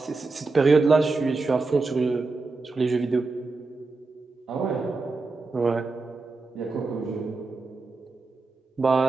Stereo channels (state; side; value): quieter; left; 3.8 dB